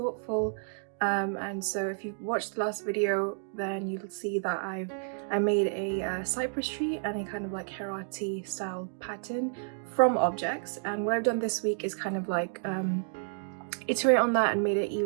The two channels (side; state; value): left; silent; digital silence